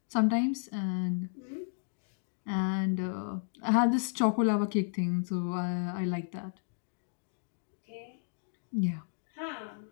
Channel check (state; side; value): silent; right; digital silence